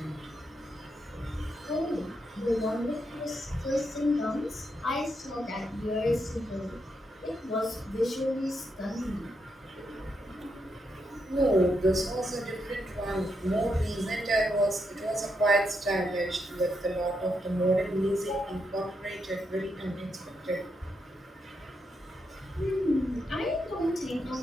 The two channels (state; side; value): normal; both; correlation 0.81